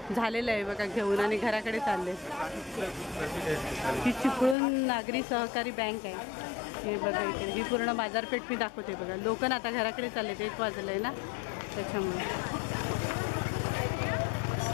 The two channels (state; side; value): drops out; right; at 4.5 s